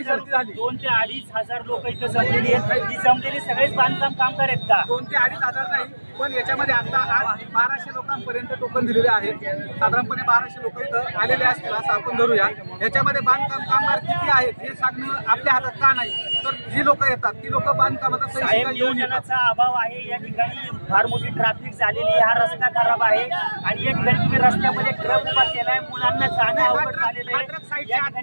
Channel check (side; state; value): both; inverted; correlation -1.00